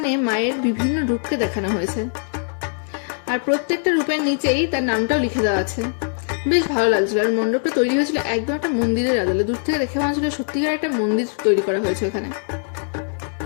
মায়ের বিভিন্ন রূপকে দেখানো হয়েছে, আর প্রত্যেকটা রূপের নিচেই তার নামটাও লিখে দেওয়া আছে। বেশ ভালো লাগছিল। আর মণ্ডপটা তৈরি হয়েছিল একদম একটা মন্দিরের আদলে, দূর থেকে দেখে মনে হচ্ছিল সত্যিকার একটা মন্দির তৈরি করা হয়েছে ওখানে।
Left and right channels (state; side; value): silent; right; 63 dB below the other